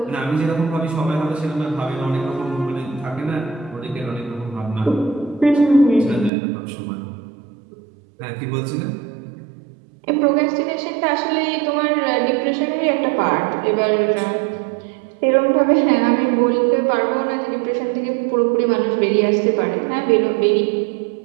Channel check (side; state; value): left; drops out; at 6.3 s